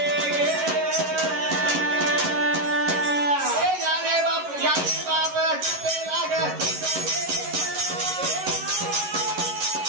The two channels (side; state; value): left; late; 11 ms